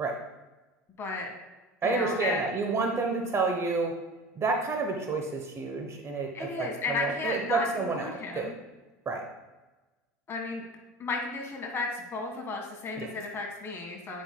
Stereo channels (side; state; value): both; normal; correlation 0.37